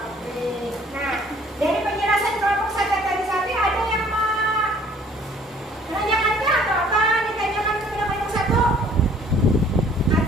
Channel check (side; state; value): both; normal; correlation 0.56